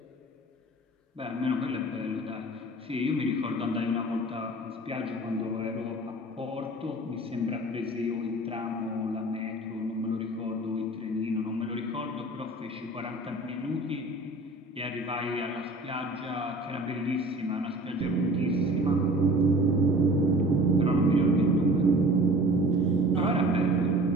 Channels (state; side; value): normal; both; correlation 0.44